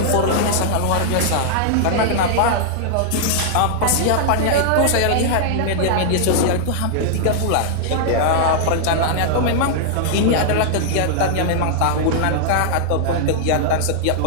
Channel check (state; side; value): different; both; correlation -0.01